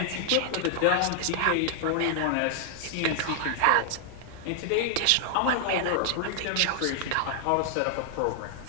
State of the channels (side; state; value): both; different; correlation 0.00